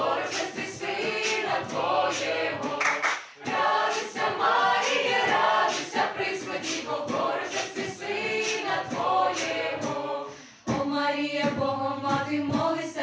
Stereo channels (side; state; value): both; identical; correlation 1.00